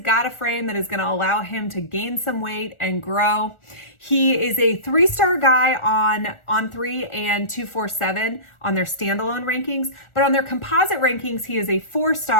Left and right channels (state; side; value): late; right; 1.4 ms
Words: a frame that is going to allow him to gain some weight and grow. He is a 3-star guy on 3 and 247 on their standalone rankings, but on their composite rankings, he is a